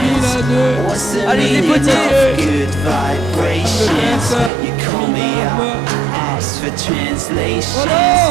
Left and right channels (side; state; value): left; drops out; at 4.5 s